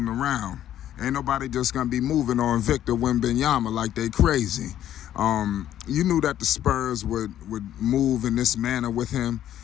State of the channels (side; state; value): right; quieter; 11.6 dB